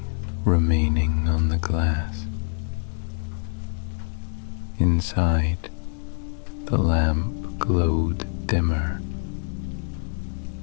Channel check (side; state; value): right; silent; digital silence